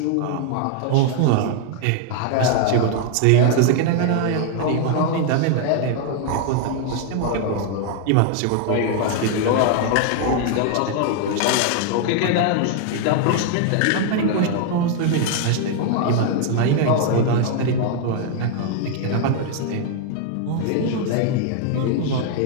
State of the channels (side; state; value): both; different; correlation 0.00